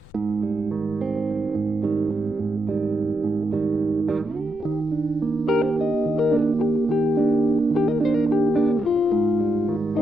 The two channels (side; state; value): left; noise; rumble, 22 dB below the sound